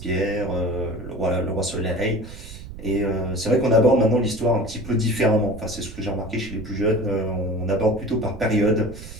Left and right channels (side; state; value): right; noise; rumble, 14 dB below the sound